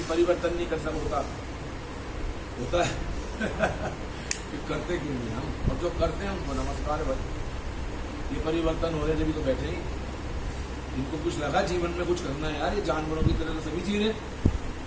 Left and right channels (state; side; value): identical; both; correlation 1.00